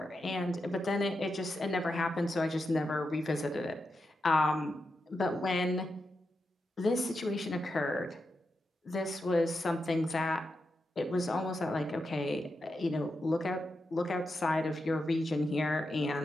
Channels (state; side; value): normal; both; correlation 0.87